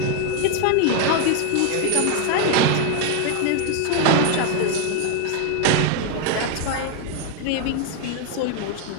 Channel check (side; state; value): both; different; correlation 0.01